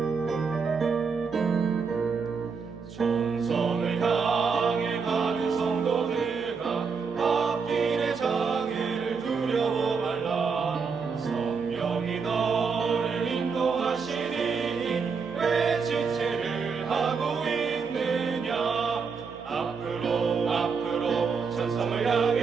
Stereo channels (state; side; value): quieter; left; 5.4 dB